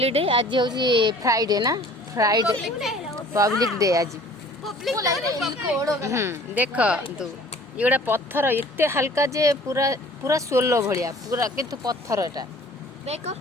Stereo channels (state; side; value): normal; both; correlation 0.50